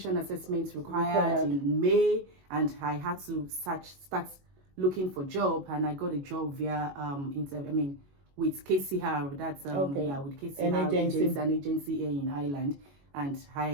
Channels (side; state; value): left; late; 21 ms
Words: assessments required in May, and I had to start looking for job, and I got a job via with KCR. That's with KCR, an agency here in Ireland, and